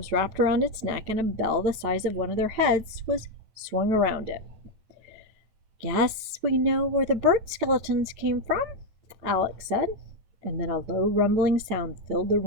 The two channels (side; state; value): left; late; 9.1 ms